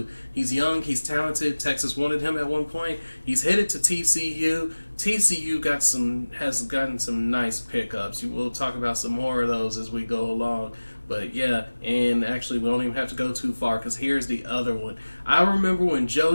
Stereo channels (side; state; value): both; inverted; correlation -1.00